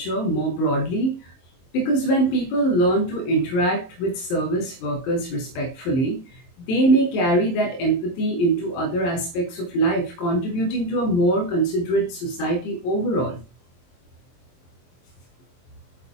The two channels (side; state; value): right; late; 23 ms